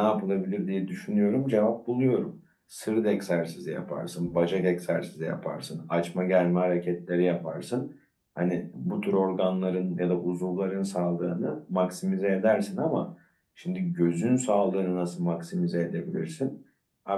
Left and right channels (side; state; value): both; identical; correlation 1.00